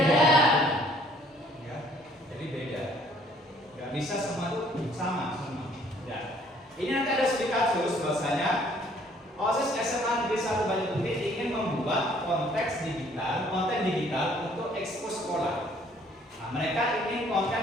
Ya, jadi beda. Gak bisa semua itu sama semua. Ya. Ini nanti ada studi kasus bahwasanya OSIS SMA Negeri 1 Banyuwangi ingin membuat konten digital untuk ekspos sekolah. Nah, mereka ingin konten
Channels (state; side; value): normal; both; correlation 0.60